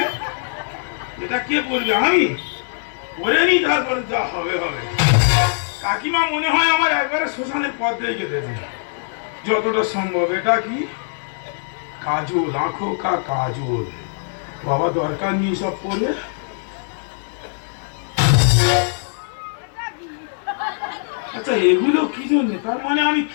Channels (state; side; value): silent; right; digital silence